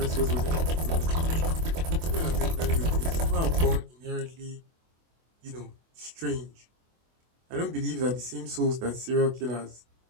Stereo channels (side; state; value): left; late; 24 ms